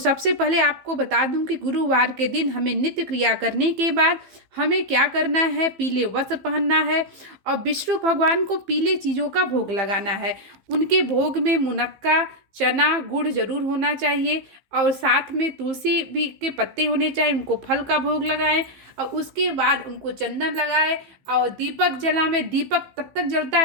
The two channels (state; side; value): late; left; 15 ms